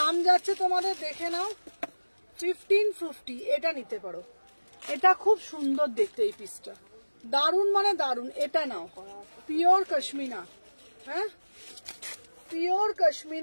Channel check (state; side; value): inverted; both; correlation -1.00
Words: যাচ্ছে তোমাদের দেখে নাও 1550। এটা নিতে পারো, এটা খুব সুন্দর দেখতে এই পিসটা, দারুন মানে দারুন। এটা নাও পিওর কাশ্মীনা, হ্যাঁ পিওর